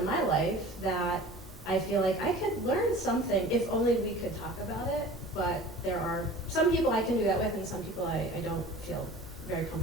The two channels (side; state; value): both; normal; correlation 0.41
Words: my life that I feel like I could learn something if only we could talk about it. But there are some people I can do that with, and some people I don't feel very